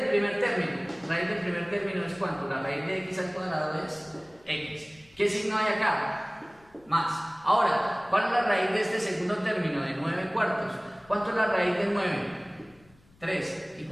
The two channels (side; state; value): left; noise; rumble, 29 dB below the sound